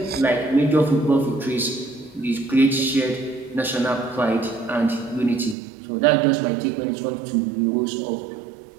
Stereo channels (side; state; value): left; drops out; at 5.6 s